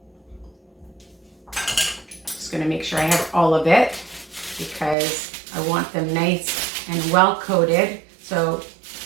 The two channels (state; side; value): drops out; left; at 5.0 s